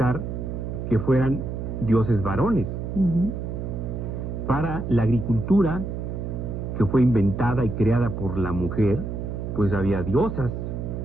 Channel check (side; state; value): right; noise; hum, 5 dB below the sound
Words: que fueran dioses varones. Para la agricultura, que fue inventada y creada por la mujer, pues había diosas.